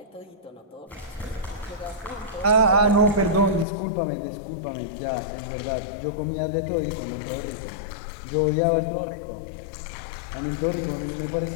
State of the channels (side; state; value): right; drops out; at 3.7 s